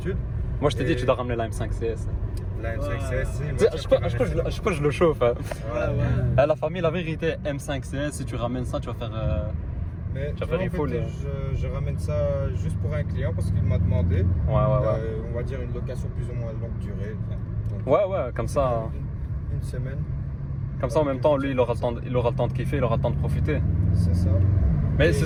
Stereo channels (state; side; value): identical; both; correlation 1.00